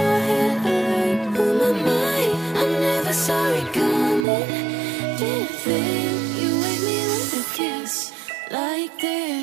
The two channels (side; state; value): left; drops out; at 4.2 s